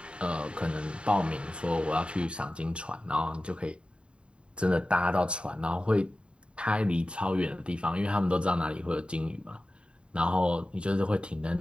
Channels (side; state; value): left; late; 0.055 ms